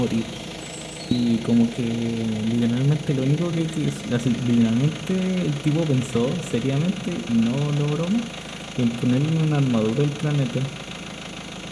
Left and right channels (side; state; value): both; identical; correlation 1.00